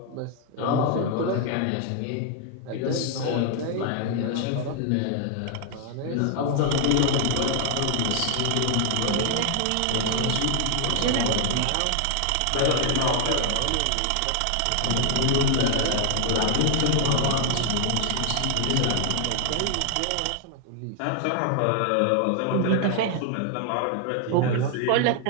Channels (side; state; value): both; different; correlation 0.00